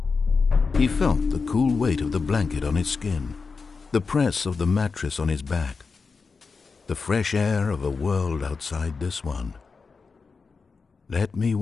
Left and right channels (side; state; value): right; quieter; 4.8 dB